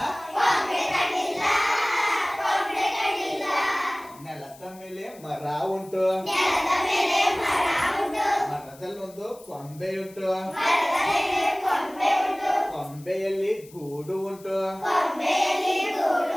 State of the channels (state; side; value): noise; left; hiss, 23 dB below the sound